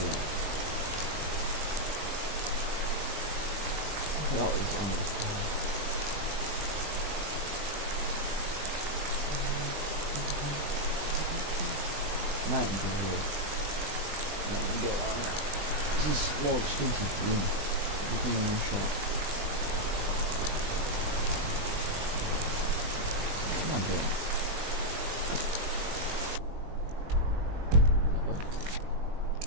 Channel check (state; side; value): late; left; 20 ms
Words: that. I forgot what was on this card. Might go here. Might go on it. This is more expensive than everything in one shop. Come on, girl.